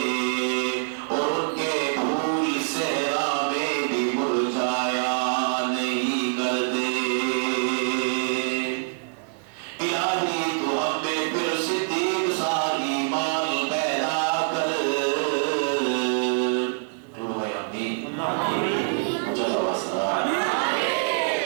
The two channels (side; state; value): left; silent; digital silence